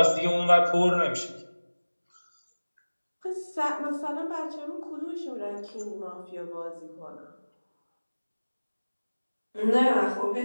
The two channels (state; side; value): inverted; both; correlation -1.00